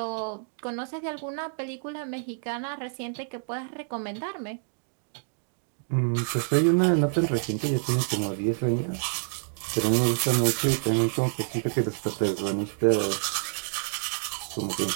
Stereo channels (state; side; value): silent; left; digital silence